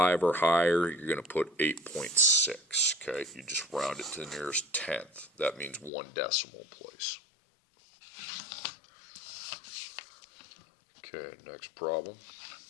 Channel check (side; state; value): right; drops out; at 5.9 s